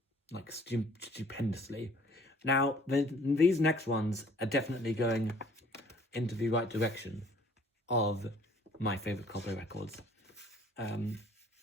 like, stupendously. Now, these next ones are definitely going into the right direction of my favourite Coldplay records. But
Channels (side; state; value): both; normal; correlation 0.56